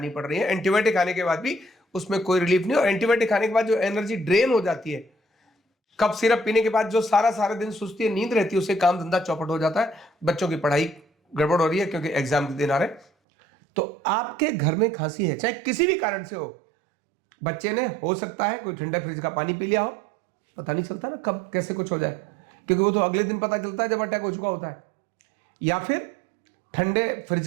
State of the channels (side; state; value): left; drops out; at 13.1 s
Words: पड़ रही है, एंटीबायोटिक खाने के बाद भी उसमें कोई रिलीफ नहीं। और एंटीबायोटिक खाने के बाद जो एनर्जी ड्रेन हो जाती है, कफ सिरप पीने के बाद जो सारा दिन सुस्ती है, नींद रहती है, उससे काम धंधा चौपट हो जाता है। बच्चों की पढ़ाई गड़बड़ हो रही है क्योंकि एग्जाम के दिन आ रहे। तो आपके घर में खांसी है, चाहे किसी भी कारण से हो, बच्चे ने हो सकता है कोई ठंडा फ्रिज का पानी पी लिया हो, पता नहीं चलता ना कब कैसे कुछ हो जाए, क्योंकि वो तो अगले दिन पता चलता है जब अटैक हो चुका होता है। या फिर ठंडे फ्रिज